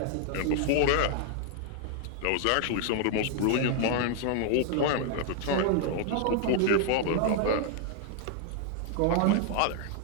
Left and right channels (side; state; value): both; different; correlation 0.00